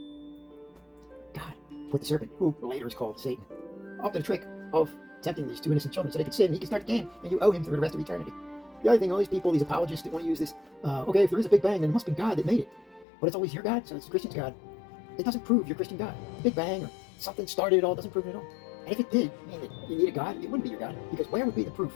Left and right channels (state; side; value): drops out; right; at 13.1 s